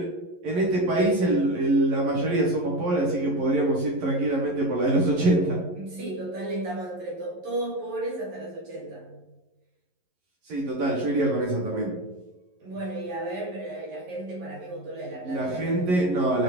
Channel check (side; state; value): left; late; 11 ms